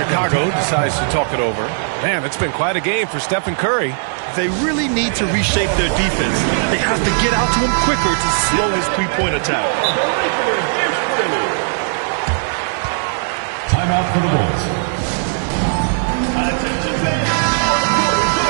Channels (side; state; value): left; silent; 61 dB below the other